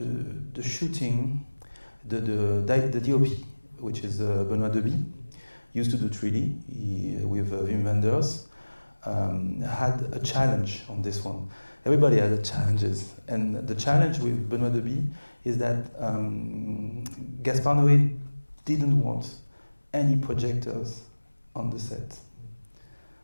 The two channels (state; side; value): inverted; both; correlation -1.00